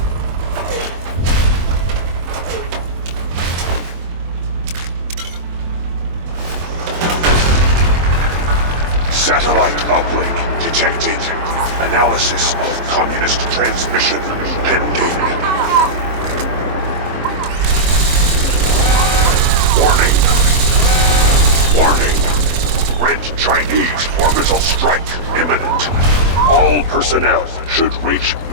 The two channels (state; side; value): late; left; 24 ms